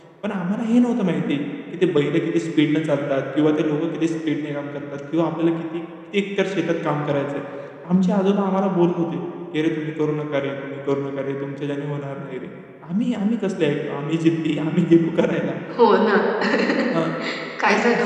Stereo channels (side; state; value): both; identical; correlation 1.00